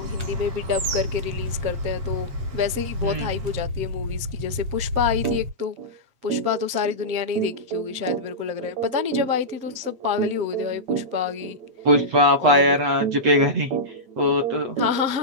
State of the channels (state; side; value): late; left; 8.1 ms